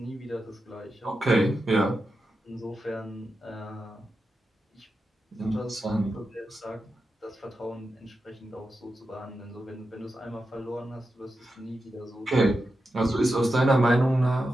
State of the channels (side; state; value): both; normal; correlation 0.89